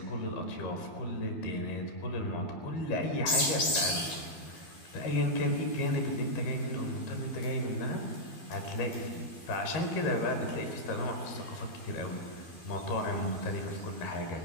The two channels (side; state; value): right; late; 12 ms